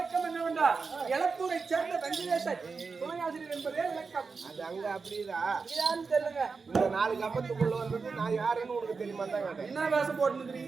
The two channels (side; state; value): left; quieter; 4.8 dB